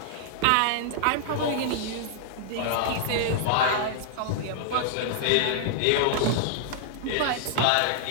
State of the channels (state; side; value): different; both; correlation -0.01